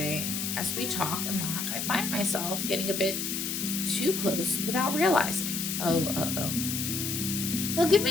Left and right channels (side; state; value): left; noise; hiss, 2 dB below the sound